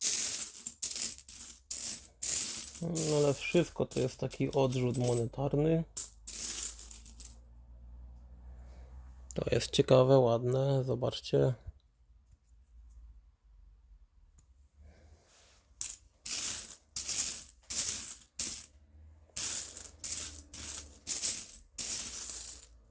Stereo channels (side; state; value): both; identical; correlation 1.00